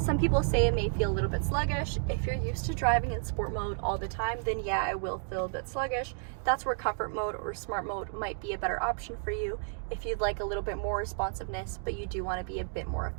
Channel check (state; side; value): silent; left; digital silence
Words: people say it may feel a little bit sluggish. If you're used to driving in sport mode all the time, then yeah, it will feel a bit sluggish. That's where comfort mode or smart mode might be a better option for you if you'd like a little bit more responsiveness, but you do want to be a bit more